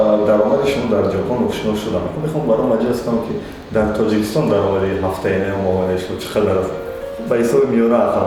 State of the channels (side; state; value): both; identical; correlation 1.00